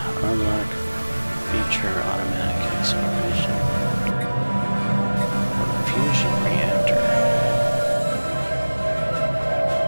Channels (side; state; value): both; inverted; correlation -1.00